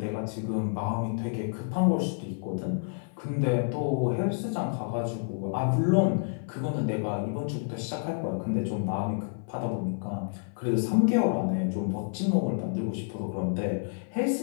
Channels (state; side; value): silent; right; 58 dB below the other